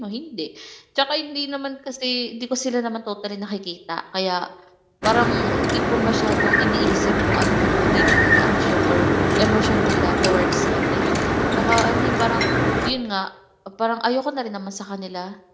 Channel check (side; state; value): both; identical; correlation 1.00